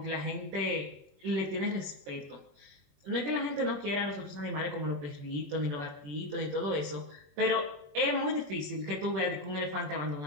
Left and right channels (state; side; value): late; left; 21 ms